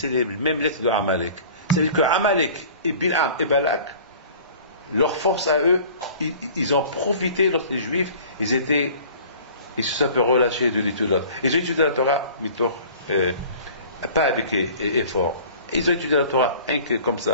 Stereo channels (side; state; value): both; inverted; correlation -0.46